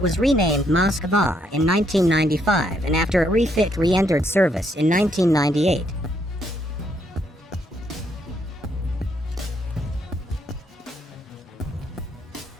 was renamed Moskva in 1995 and after a refit re-entered service in 1998.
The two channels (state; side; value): normal; both; correlation 0.73